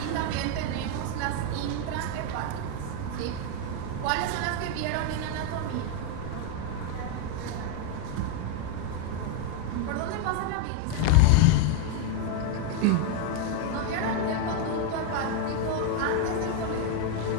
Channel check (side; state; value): both; different; correlation 0.01